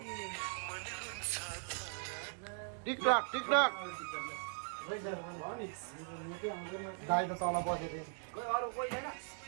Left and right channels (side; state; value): left; silent; 51 dB below the other